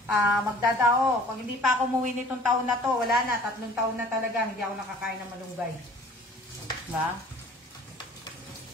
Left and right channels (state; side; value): normal; both; correlation 0.49